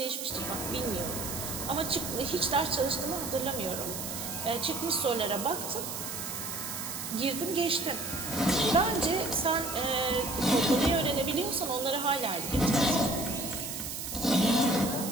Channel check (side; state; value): right; noise; hiss, 6 dB below the sound